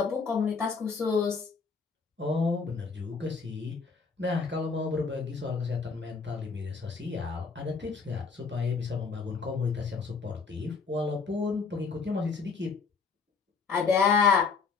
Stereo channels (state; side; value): quieter; right; 5.1 dB